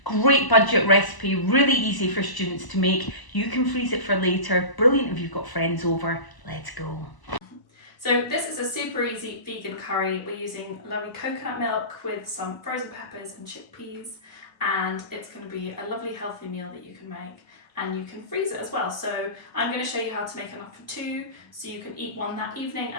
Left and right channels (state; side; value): late; right; 1.0 ms